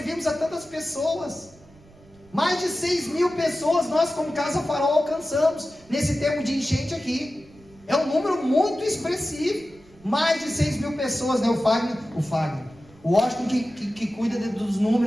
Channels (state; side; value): noise; right; rumble, 26 dB below the sound